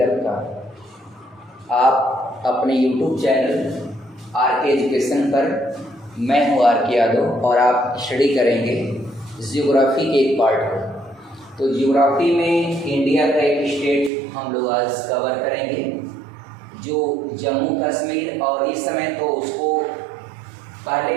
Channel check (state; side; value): drops out; left; at 14.1 s